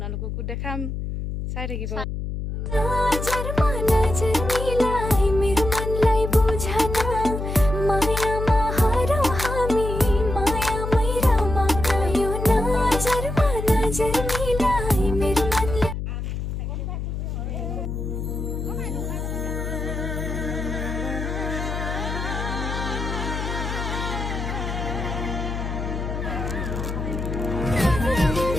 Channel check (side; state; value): left; noise; hum, 4 dB below the sound